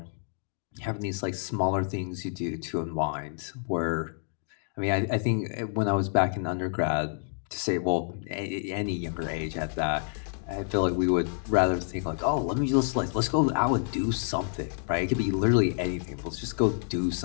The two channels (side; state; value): right; silent; 58 dB below the other